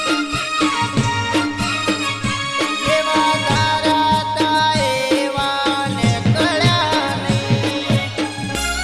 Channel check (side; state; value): both; identical; correlation 1.00